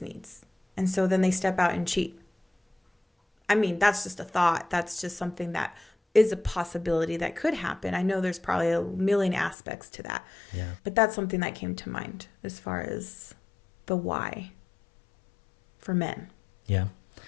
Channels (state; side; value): drops out; right; at 9.6 s